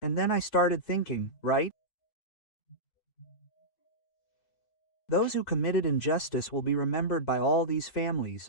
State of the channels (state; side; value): late; right; 4.6 ms